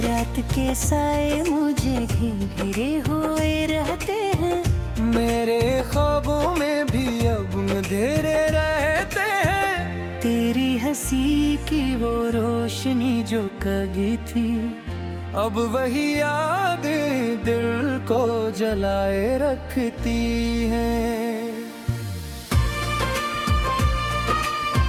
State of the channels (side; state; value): both; identical; correlation 1.00